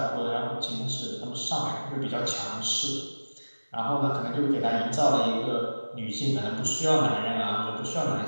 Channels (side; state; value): both; inverted; correlation -1.00